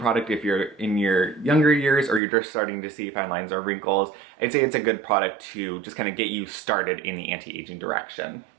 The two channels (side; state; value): left; drops out; at 2.2 s